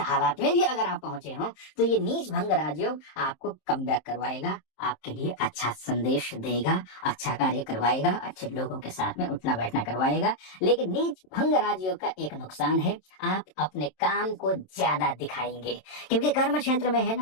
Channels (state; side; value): late; right; 27 ms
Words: में भी अगर आप पहुंचे हो, तो ये नीच भंग राजयोग आपको कम बैक करवाएगा, आपके लिए अच्छा संदेश देगा, अच्छा कार्य करवाएगा, अच्छे लोगों के साथ में उठना बैठना करवाएगा। लेकिन नीच भंग राजयोग का एक नुकसान है, आप अपने काम को ज्यादा दिखाएंगे, क्योंकि कर्म क्षेत्र में है